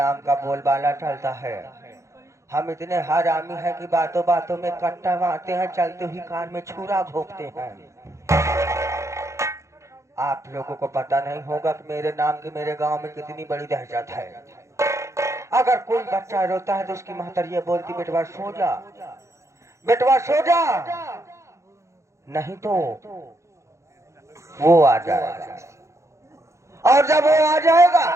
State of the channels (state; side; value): late; left; 0.14 ms